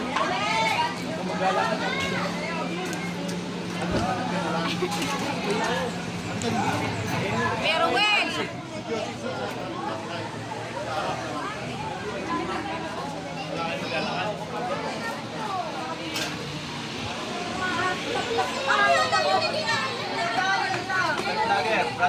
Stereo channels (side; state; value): both; identical; correlation 1.00